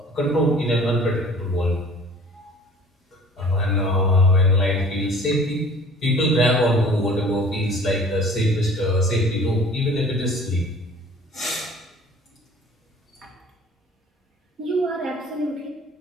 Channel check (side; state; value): both; normal; correlation 0.48